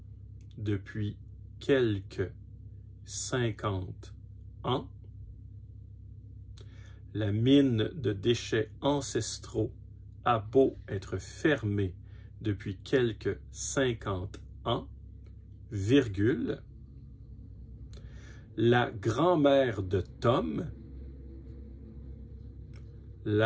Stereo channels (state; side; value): identical; both; correlation 1.00